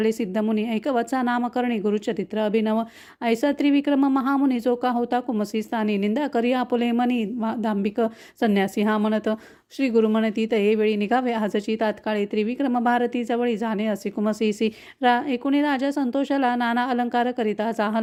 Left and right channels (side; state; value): both; identical; correlation 1.00